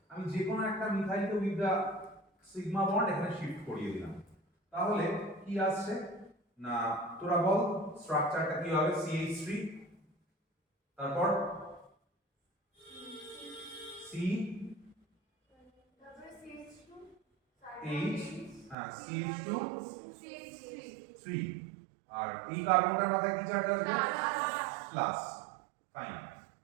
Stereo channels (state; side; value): drops out; left; at 18.8 s